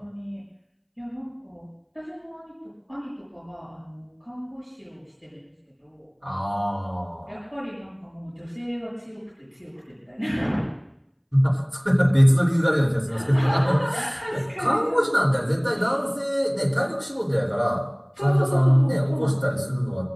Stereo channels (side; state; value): both; identical; correlation 1.00